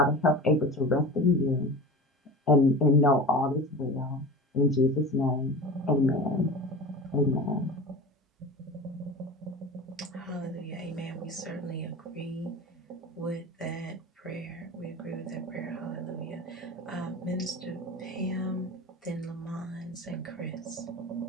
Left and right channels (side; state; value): both; normal; correlation 0.33